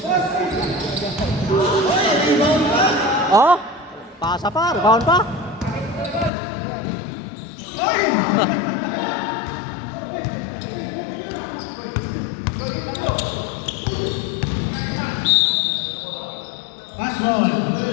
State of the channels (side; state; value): right; drops out; at 6.3 s